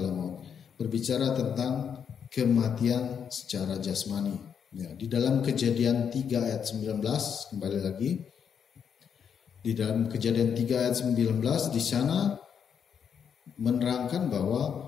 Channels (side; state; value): right; quieter; 7.5 dB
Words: maut. Berbicara tentang kematian secara jasmani. Ya, di dalam Kejadian 3 ayat 19, kembali lagi. Di dalam Kejadian 3 ayat 19, di sana menerangkan